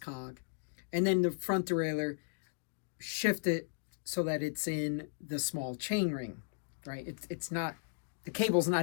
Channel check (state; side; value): silent; right; digital silence